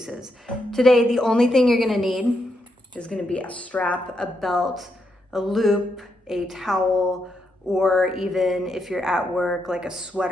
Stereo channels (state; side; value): normal; both; correlation 0.81